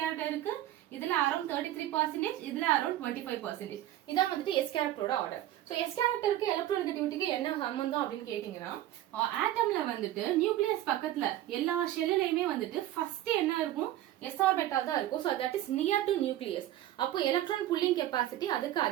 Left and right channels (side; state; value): left; quieter; 13.6 dB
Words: இருக்கு, இதுல அரௌண்ட் 33%, இதுல அரௌண்ட் 25%. இதான் வந்துட்டு s கேரக்டரோட ஆர்டர். சோ s கேரக்டருக்கு எலக்ட்ரோநெகட்டிவிட்டிக்கு என்ன சம்பந்தம் அப்படின்னு கேட்டீங்கன்னா, ஆட்டம்ல வந்துட்டு நியூக்ளியஸ் பக்கத்துல எல்லா ஷெல்லுலயுமே வந்துட்டு ஃபர்ஸ்ட் என்ன இருக்கும்? s ஆர்பிட்டால் தான் இருக்கும். So that is near to nucleus. அப்போ எலக்ட்ரான் புல்லிங் கெபாசிட்டி அதுக்கு